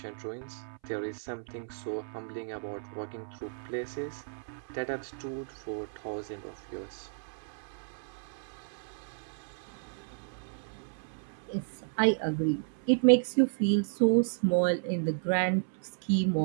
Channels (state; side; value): silent; left; 56 dB below the other